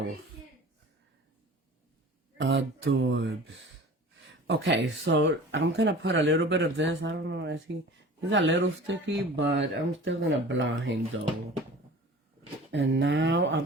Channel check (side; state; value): both; normal; correlation 0.41